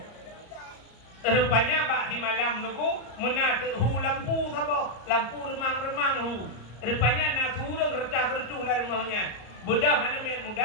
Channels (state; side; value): late; right; 34 ms